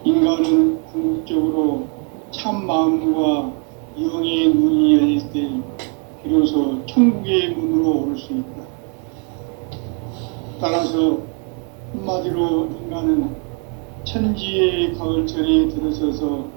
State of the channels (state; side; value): quieter; left; 38.7 dB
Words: 인간은 궁극적으로 참 마음과 영의 문이 열릴 때 비로소 천국의 문으로 오를 수 있다. 따라서 한마디로 인간은 천지의 가을철에 들어서서